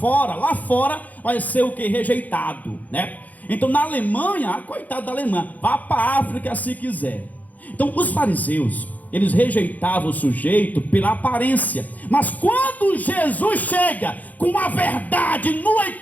lá fora vai ser o que? Rejeitado, né? Então, na Alemanha, coitado da Alemanha, vá para a África se quiser. Então, os fariseus, eles rejeitavam o sujeito pela aparência. Mas quando Jesus chega com a verdade nua e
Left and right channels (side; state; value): right; late; 0.079 ms